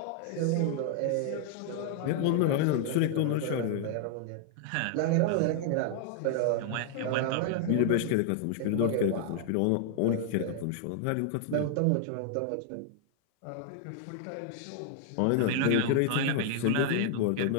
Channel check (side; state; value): both; different; correlation 0.00